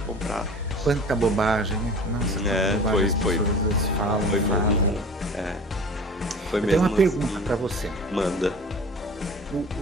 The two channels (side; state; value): both; normal; correlation 0.41